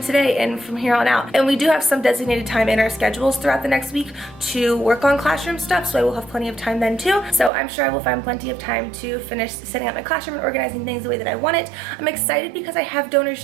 today and from here on out. And we do have some designated time in our schedules throughout the next week to work on classroom stuff, so I will have plenty of time then too. So I'm sure I will find plenty of time to finish setting up my classroom and organizing things the way that I want it. I'm excited because I have Donors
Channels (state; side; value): drops out; left; at 7.5 s